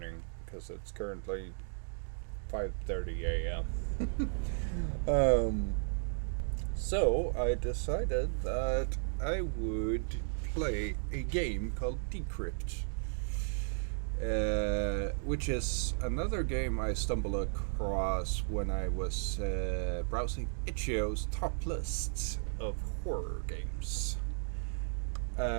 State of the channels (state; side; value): silent; left; digital silence